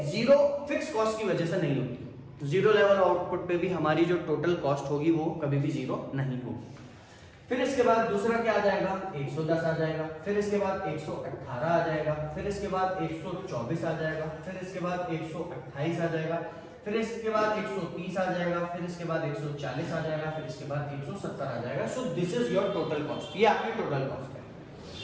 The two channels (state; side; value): identical; both; correlation 1.00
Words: 0 फिक्स कॉस्ट की वजह से नहीं होती। 0 लेवल आउटपुट पे भी हमारी जो टोटल कॉस्ट होगी वो कभी भी 0 नहीं होगी। फिर इसके बाद दूसरा क्या आ जाएगा, 110 आ जाएगा, फिर इसके बाद 118 आ जाएगा, फिर इसके बाद 124 आ जाएगा, फिर इसके बाद 128 आ जाएगा, फिर इसके बाद 130 आ जाएगा, फिर इसके बाद 140 आ जाएगा, फिर इसके बाद 170 आ जाएगा। So this is your total cost, ये आपकी टोटल कॉस्ट